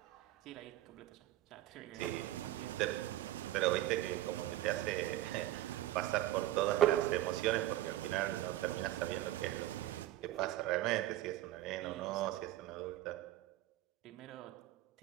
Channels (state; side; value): quieter; left; 14.8 dB